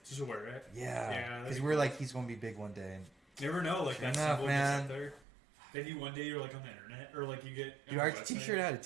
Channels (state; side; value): drops out; left; at 5.2 s